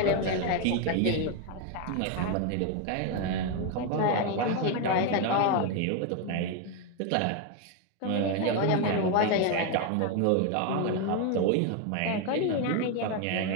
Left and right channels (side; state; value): both; different; correlation 0.01